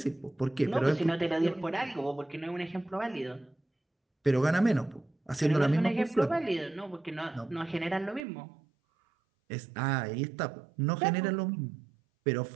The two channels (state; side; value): drops out; left; at 8.2 s